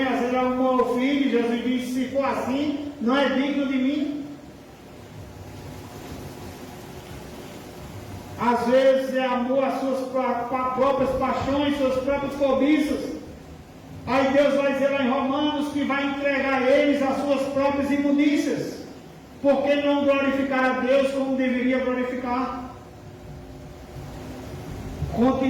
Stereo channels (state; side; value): identical; both; correlation 1.00